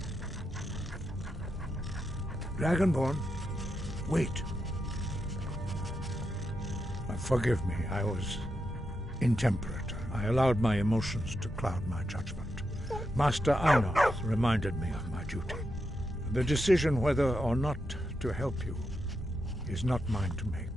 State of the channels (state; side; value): normal; both; correlation 0.85